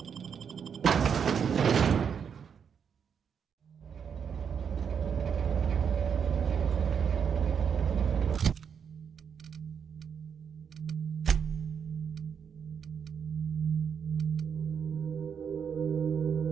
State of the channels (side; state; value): left; quieter; 7.2 dB